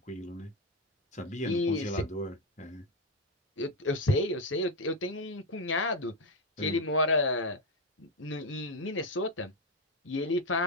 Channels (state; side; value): normal; both; correlation 0.09